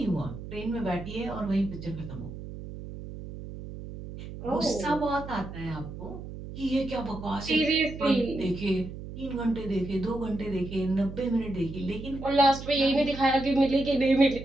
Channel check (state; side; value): noise; right; hum, 11 dB below the sound